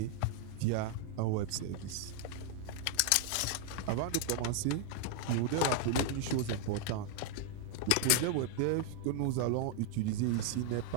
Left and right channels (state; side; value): different; both; correlation 0.00